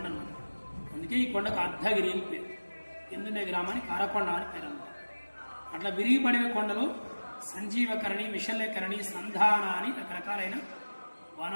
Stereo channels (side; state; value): both; inverted; correlation -1.00